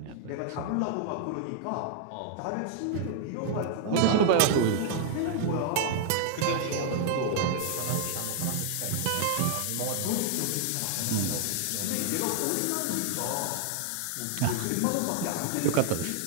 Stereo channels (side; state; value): both; different; correlation 0.00